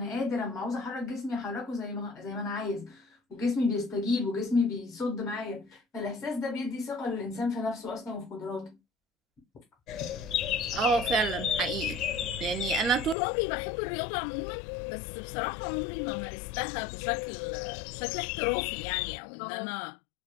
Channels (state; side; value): drops out; right; at 13.2 s